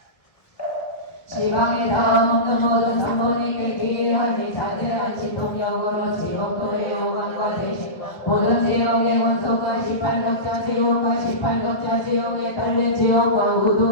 지방에 닿아먹는 모든 삼본이께 기이하니 자제한 신통력으로 지옥도의 오감과 대신 모든 지옥의 원소가 18격자 지옥과 18격자 지옥에 달린 지옥과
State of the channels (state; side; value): late; right; 1.5 ms